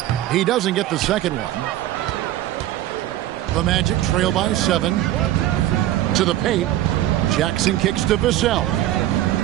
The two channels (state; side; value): quieter; left; 13.9 dB